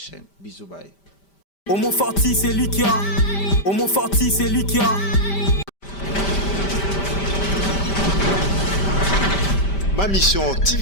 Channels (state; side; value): late; right; 5.1 ms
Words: bisous bye. Homo Forti, c'est lui qui a. Homo Forti, c'est lui qui a. Ma mission